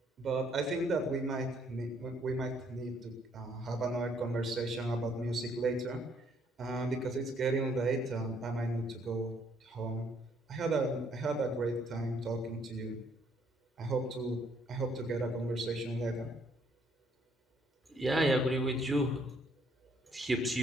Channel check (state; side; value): normal; both; correlation 0.67